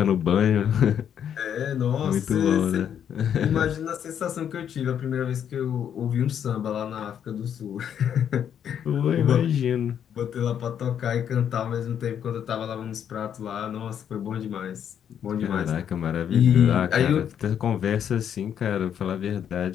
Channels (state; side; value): quieter; right; 8.9 dB